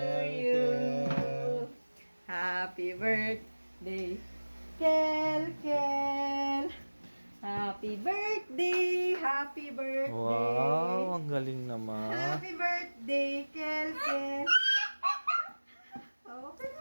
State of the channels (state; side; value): inverted; both; correlation -1.00